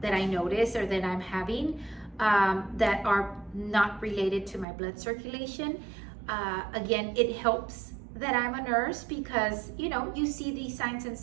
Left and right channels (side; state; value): left; drops out; at 4.7 s